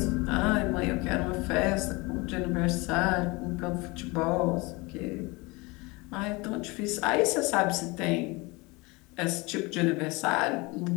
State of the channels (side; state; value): right; quieter; 25.3 dB